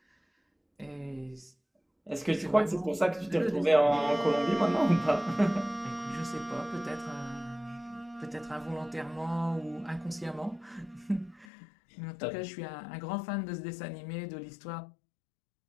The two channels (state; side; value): drops out; right; at 11.5 s